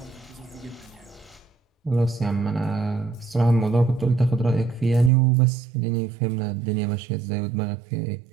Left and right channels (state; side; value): drops out; left; at 5.1 s